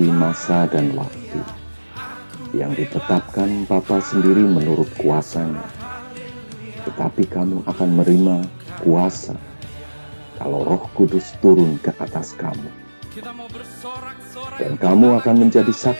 masa dan waktu yang ditetapkan Bapa sendiri menurut kuasanya. Tetapi kamu akan menerima kuasa kalau Roh Kudus turun ke atas kamu. Dan kamu akan menjadi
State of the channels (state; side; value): inverted; both; correlation -1.00